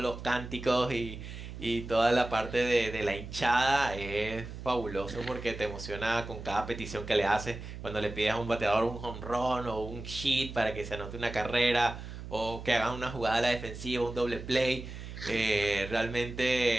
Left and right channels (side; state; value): right; noise; hum, 10 dB below the sound